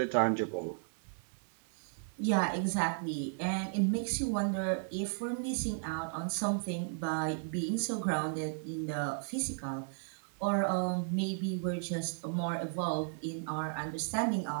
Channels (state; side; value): silent; left; 55 dB below the other